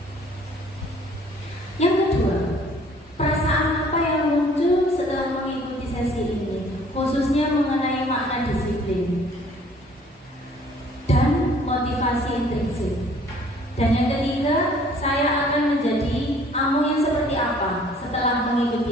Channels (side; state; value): both; normal; correlation 0.56